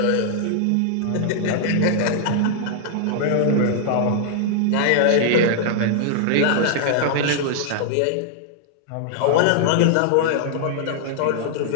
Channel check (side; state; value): both; different; correlation -0.01